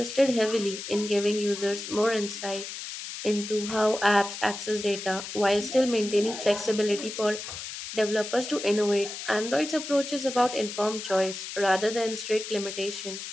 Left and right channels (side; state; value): left; noise; hiss, 8 dB below the sound